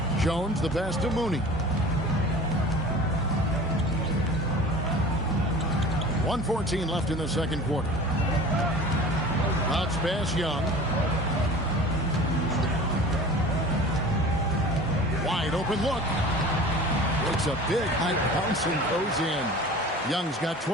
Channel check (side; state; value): both; normal; correlation 0.40